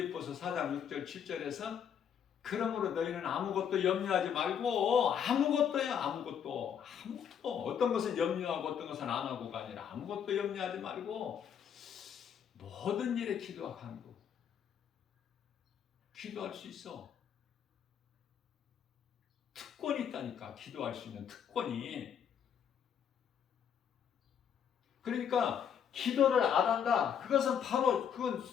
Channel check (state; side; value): quieter; right; 8.2 dB